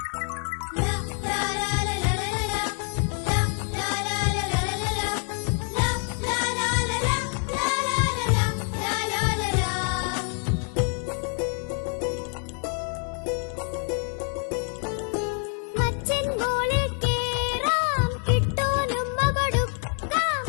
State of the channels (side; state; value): right; quieter; 38.6 dB